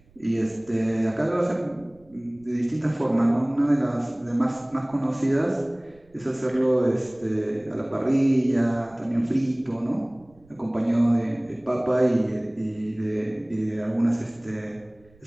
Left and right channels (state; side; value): noise; right; rumble, 29 dB below the sound